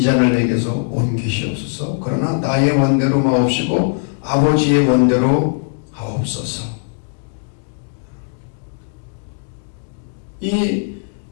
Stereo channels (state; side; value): silent; right; digital silence